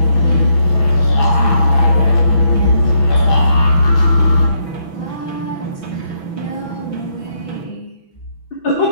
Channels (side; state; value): right; late; 6.0 ms